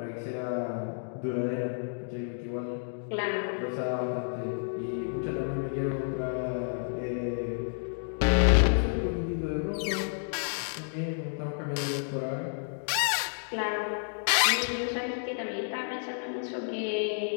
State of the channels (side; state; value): right; silent; digital silence